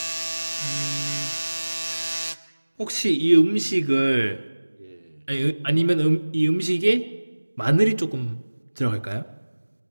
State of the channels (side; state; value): both; inverted; correlation -1.00